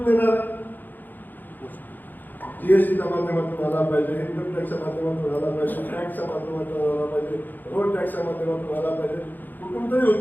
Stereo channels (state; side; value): late; right; 0.087 ms